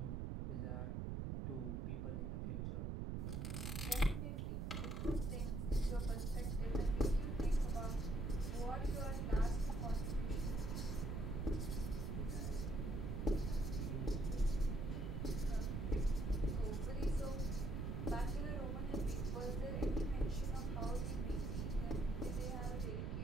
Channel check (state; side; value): noise; right; rumble, 1 dB below the sound